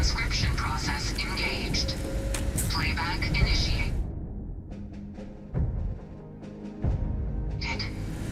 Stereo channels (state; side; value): identical; both; correlation 1.00